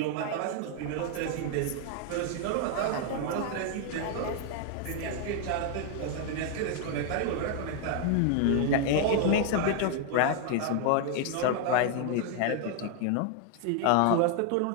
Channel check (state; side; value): different; both; correlation 0.00